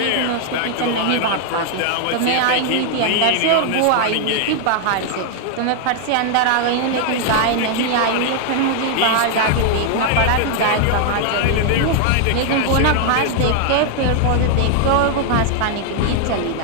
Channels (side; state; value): both; different; correlation 0.00